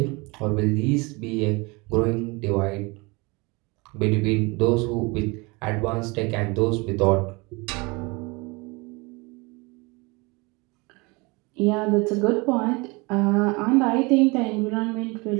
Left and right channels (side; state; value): left; quieter; 26.6 dB